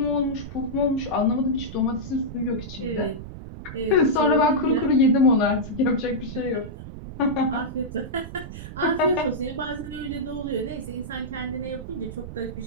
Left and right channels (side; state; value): right; noise; rumble, 11 dB below the sound